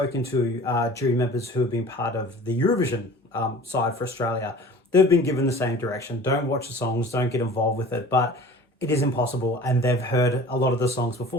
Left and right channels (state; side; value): normal; both; correlation 0.43